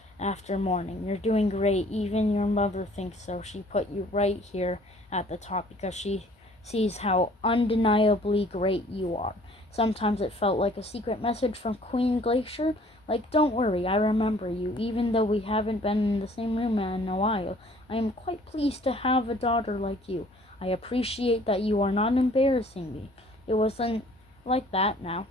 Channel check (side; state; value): both; normal; correlation 0.55